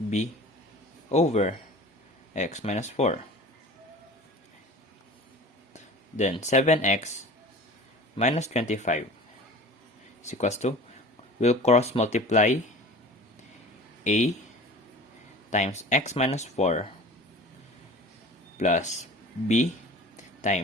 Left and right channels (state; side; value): normal; both; correlation 0.40